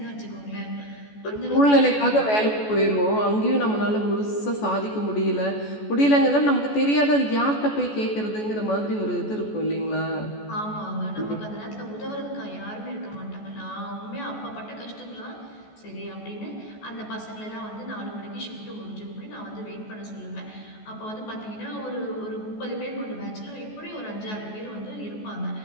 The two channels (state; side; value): late; right; 14 ms